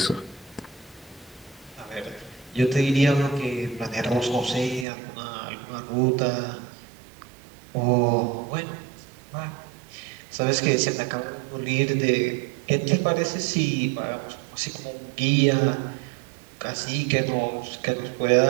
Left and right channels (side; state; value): left; drops out; at 4.9 s